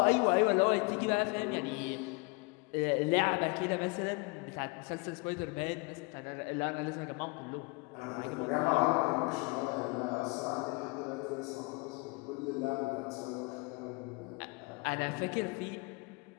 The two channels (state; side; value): quieter; right; 29.2 dB